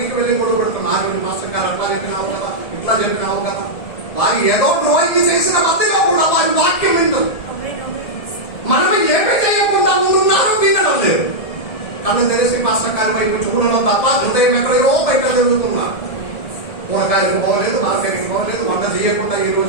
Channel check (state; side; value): late; right; 1.7 ms